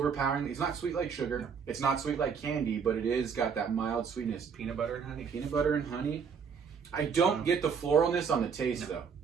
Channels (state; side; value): quieter; left; 6.4 dB